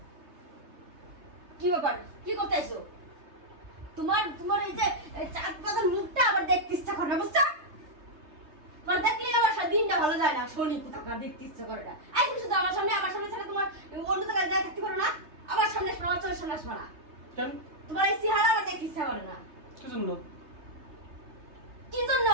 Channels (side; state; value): left; late; 3.3 ms